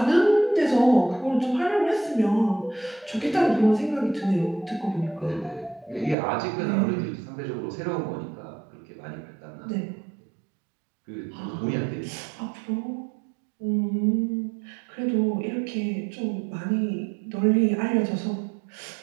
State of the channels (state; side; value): drops out; left; at 6.2 s